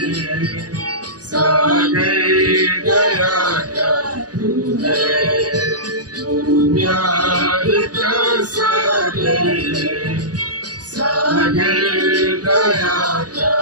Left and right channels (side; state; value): left; late; 0.68 ms